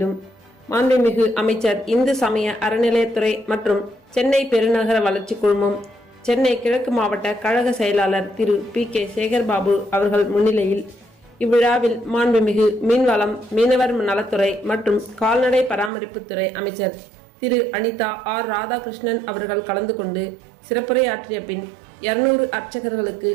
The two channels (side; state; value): left; drops out; at 15.9 s